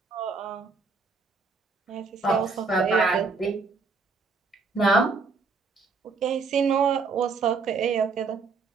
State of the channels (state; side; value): quieter; left; 4.4 dB